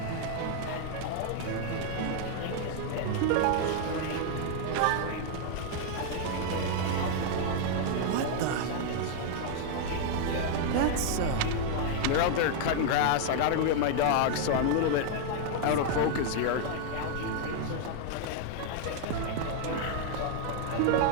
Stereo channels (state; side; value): different; both; correlation 0.00